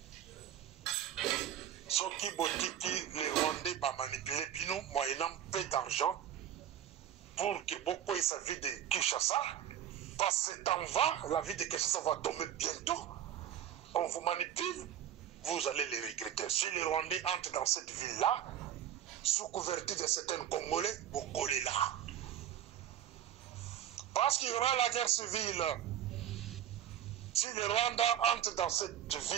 Ce qui botiki les Rwandais va manipuler Bino moyennant peu d'argent pour que beaucoup aient sa vie de Kinshasa. Parce que temps va, la vie de Kinshasa va tomber bientôt. On vous manipule, vous allez les regretter. Si les Rwandais entrent dans cette ville-là, sous couverture de certains Congolais, vous collez là. Parce qu'il y aura la guerre civile. Si le Rwanda entre dans cette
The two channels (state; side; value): quieter; left; 10.5 dB